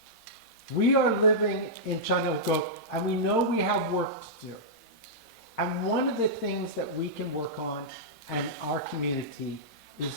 We are living in Chanilgo, and we know we have work to do. And one of the things that we can work on in our community is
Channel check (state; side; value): normal; both; correlation -0.12